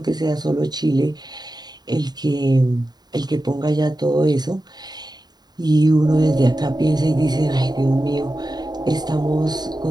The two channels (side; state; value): left; late; 0.20 ms